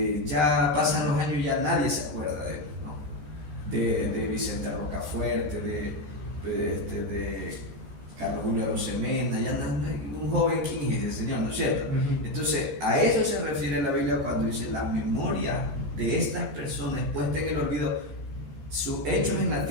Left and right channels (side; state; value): left; late; 13 ms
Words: Ya pasan los años y ya nadie se acuerda de él, ¿no? De Vicente Rocafuerte, de Carlos Julio Arosemena, ya un joven, ¿quién es el Señor? ¿No es cierto? Entonces, a eso se refiere la Biblia cuando dice la memoria de estas personas puesta en el olvido, sus hechos en la